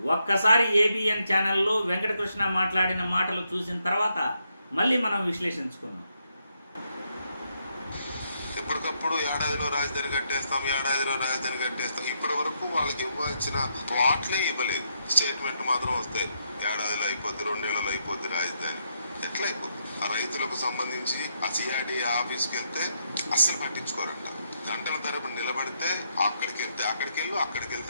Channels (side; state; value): both; inverted; correlation -0.78